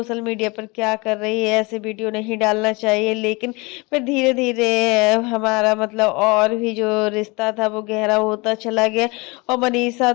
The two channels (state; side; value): quieter; right; 26.2 dB